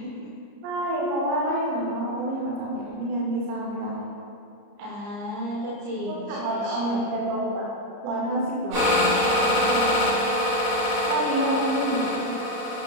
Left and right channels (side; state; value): left; late; 34 ms